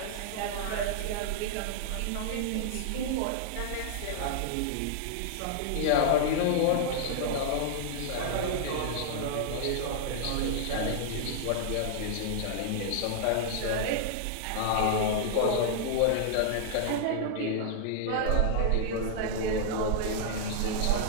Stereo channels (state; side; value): different; both; correlation -0.01